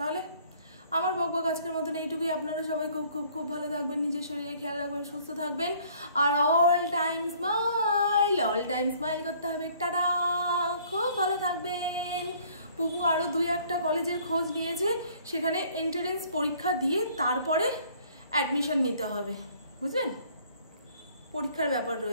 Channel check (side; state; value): both; inverted; correlation -0.58